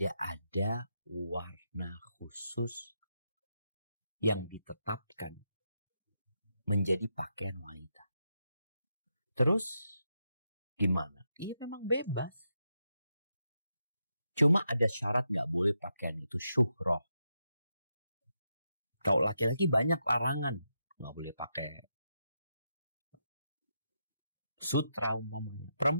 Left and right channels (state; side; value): inverted; both; correlation -0.84